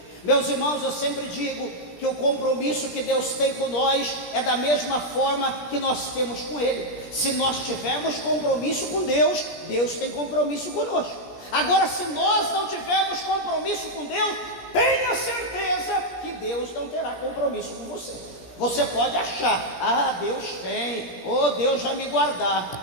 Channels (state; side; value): late; right; 17 ms